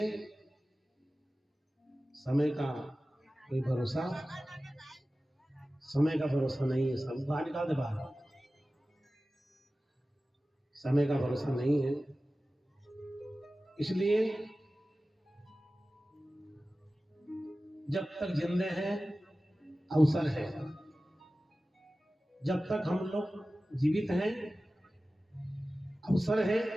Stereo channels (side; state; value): both; normal; correlation 0.96